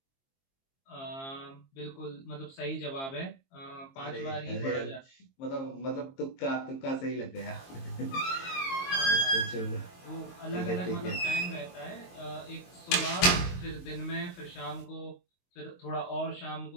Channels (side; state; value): right; late; 22 ms